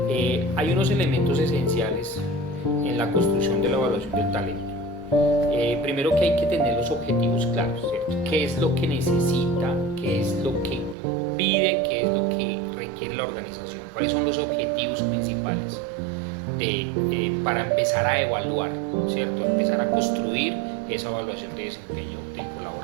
Hay unos elementos esenciales en la construcción de la evaluación del talento. Primero que hay que tener los objetivos claros, ¿cierto? ¿Qué es lo que necesita? ¿Qué es lo que pide? ¿Qué es lo que requiere la organización? ¿Cuáles son los objetivos principales para empezar a evaluar, ¿cierto? Empezar a construir esa evaluación de desempeño del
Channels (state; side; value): drops out; left; at 11.0 s